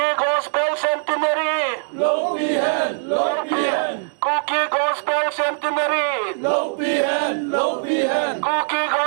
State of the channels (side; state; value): left; silent; digital silence